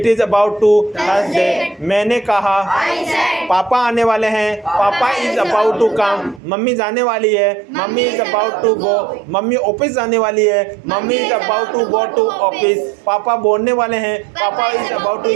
is about to Thursday. मैंने कहा, I said. पापा आने वाले हैं। Papa is about to come. मम्मी जाने वाली है। Mummy is about to go. मम्मी ऑफिस जाने वाली है। Mummy is about to go to office. पापा बोलने वाले हैं। Papa is about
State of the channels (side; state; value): left; drops out; at 6.4 s